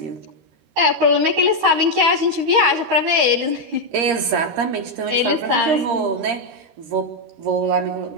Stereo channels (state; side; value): late; left; 13 ms